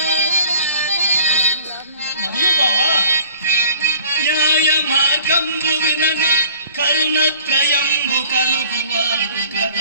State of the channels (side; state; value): both; inverted; correlation -0.49